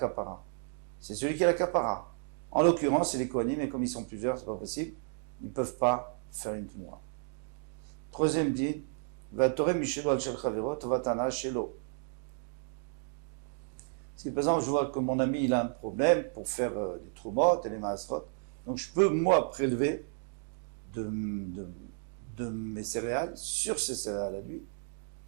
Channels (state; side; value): silent; left; 56 dB below the other